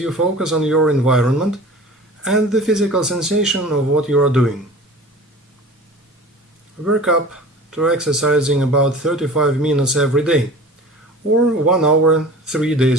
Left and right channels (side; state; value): both; normal; correlation 0.40